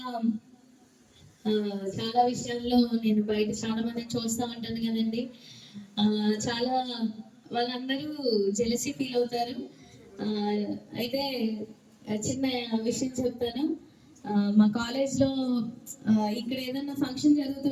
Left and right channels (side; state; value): both; identical; correlation 1.00